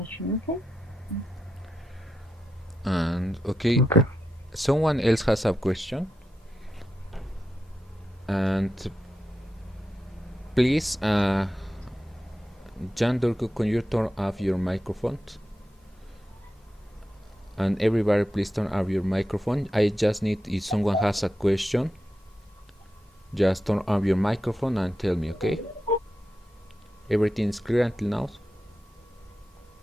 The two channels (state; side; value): normal; both; correlation 0.88